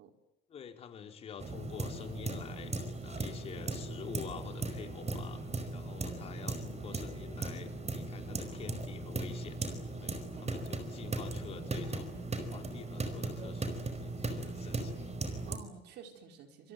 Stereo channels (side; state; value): both; normal; correlation 0.66